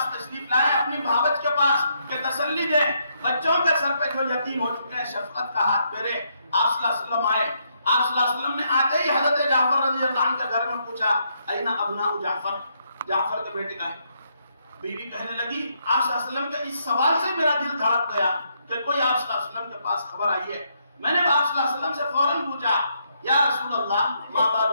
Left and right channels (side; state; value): both; inverted; correlation -0.76